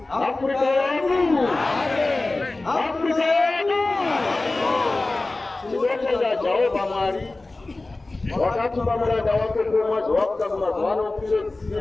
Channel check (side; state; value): right; quieter; 3.1 dB